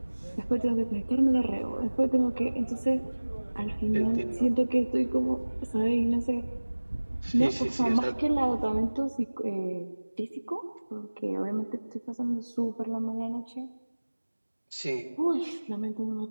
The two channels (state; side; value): inverted; both; correlation -1.00